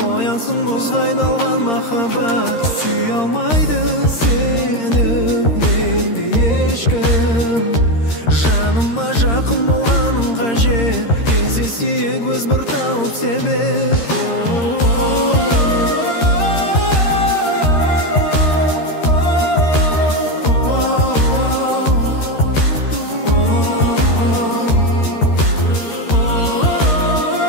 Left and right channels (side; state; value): right; late; 13 ms